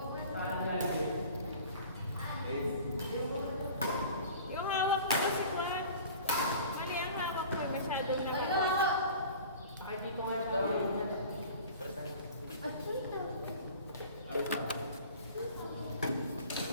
Yung hawak ko kasi Juan. Mali ang hawak ko. Masyadong nakita. Hindi ko nga ito.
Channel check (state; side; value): inverted; both; correlation -0.43